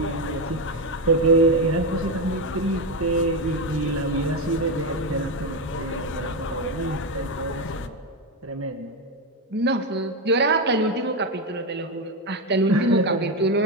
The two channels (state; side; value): normal; both; correlation 0.10